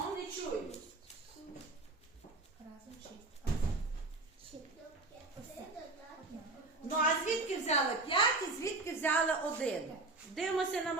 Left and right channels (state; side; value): quieter; left; 3.3 dB